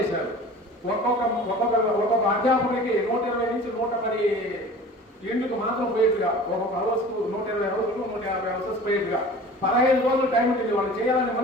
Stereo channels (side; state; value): both; normal; correlation 0.42